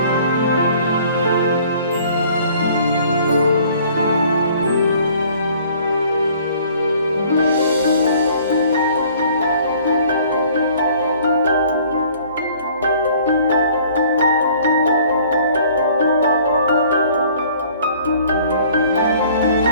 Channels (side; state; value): both; inverted; correlation -0.55